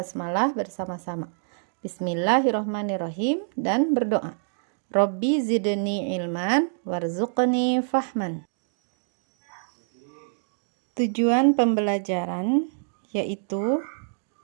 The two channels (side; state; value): left; silent; digital silence